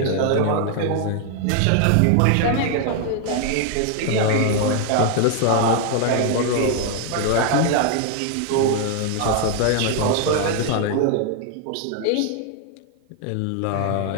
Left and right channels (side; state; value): both; different; correlation 0.00